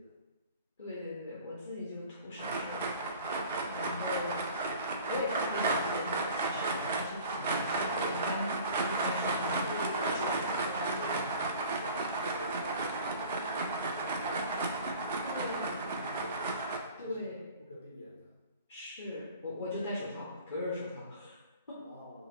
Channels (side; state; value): both; inverted; correlation -0.45